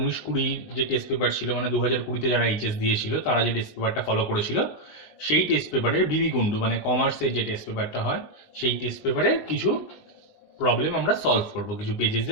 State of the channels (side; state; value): right; late; 20 ms